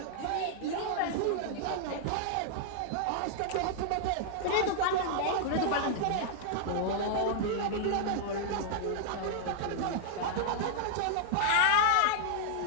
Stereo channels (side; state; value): both; different; correlation -0.01